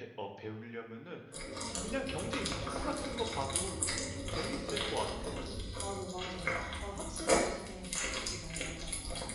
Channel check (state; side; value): identical; both; correlation 1.00